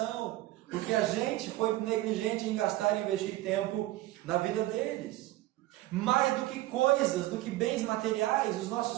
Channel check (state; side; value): quieter; left; 17.0 dB